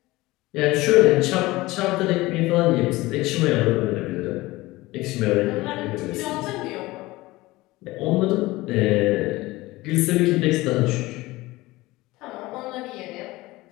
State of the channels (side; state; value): right; quieter; 19.7 dB